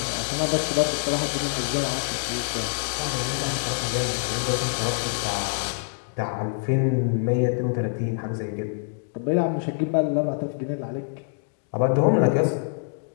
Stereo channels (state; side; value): silent; right; digital silence